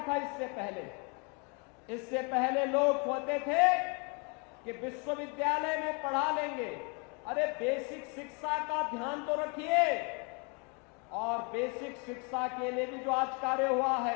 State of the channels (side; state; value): right; quieter; 34.4 dB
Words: था इससे पहले? इससे पहले लोग होते थे कि विश्वविद्यालय में पढ़ा लेंगे। अरे बेसिक शिक्षा का ध्यान तो रखिए। और बेसिक शिक्षा के लिए भी जो आज कार्य हुआ